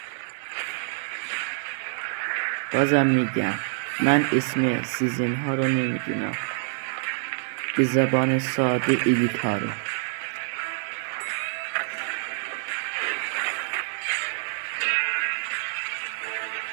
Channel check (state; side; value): silent; left; digital silence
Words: بازم میگم من اسم سیزن ها رو نمیدونم، به زبان ساده ایلیت ها رو.